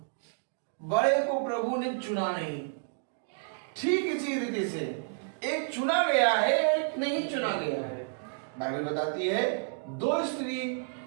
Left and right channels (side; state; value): left; silent; digital silence